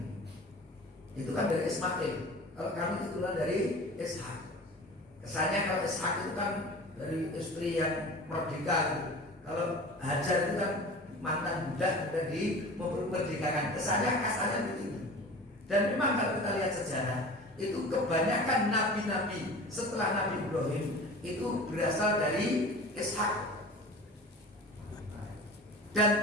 Itu kan dari Ismail, kalau kami itulah dari Ishak. Kesannya kalau Ishak itu kan dari istri yang merdeka gitu. Kalau Hajar itu kan mantan budak sudah memerdekakan. Kesannya kasarnya begitu. Dan memang kalau kita lihat sejarah, itu kebanyakan nabi-nabi setelah Nabi Ibrahim itu berasal dari Ishak. Dan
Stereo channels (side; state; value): both; normal; correlation 0.38